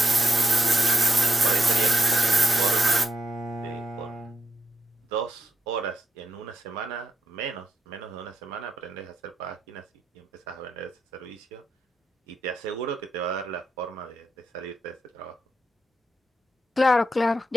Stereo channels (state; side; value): normal; both; correlation 0.86